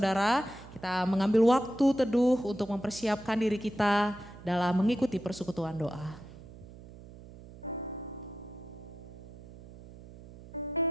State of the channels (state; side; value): noise; right; hum, 18 dB below the sound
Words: kita mengambil waktu teduh untuk mempersiapkan diri kita dalam mengikuti persekutuan doa.